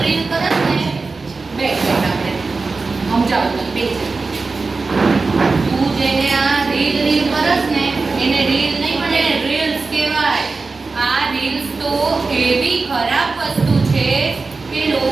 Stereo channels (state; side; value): quieter; left; 4.0 dB